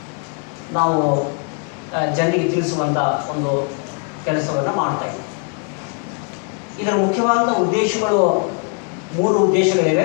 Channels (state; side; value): quieter; right; 39.9 dB